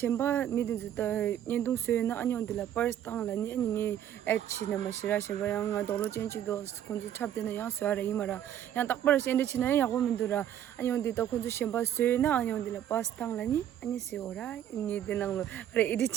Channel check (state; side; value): quieter; left; 10.7 dB